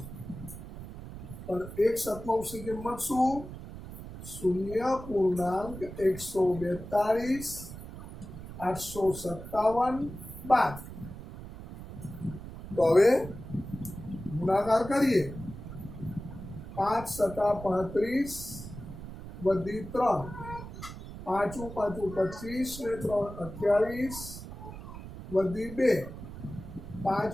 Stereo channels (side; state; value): right; noise; rumble, 12 dB below the sound